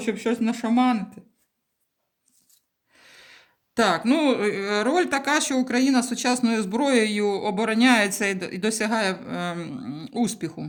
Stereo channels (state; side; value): identical; both; correlation 1.00